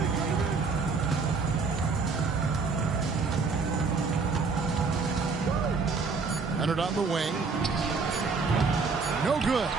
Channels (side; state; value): left; quieter; 4.6 dB